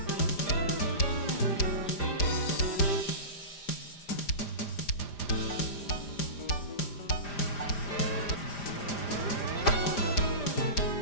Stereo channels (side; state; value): right; late; 5.0 ms